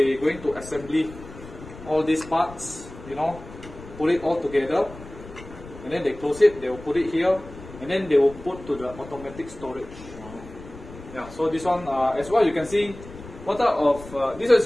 going to assembly all these parts, you know, put it all together, and then they close it, they will put it here, and then they will put to the automatic storage. Yeah, so this one as well you can see what type of this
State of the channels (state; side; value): noise; left; rumble, 16 dB below the sound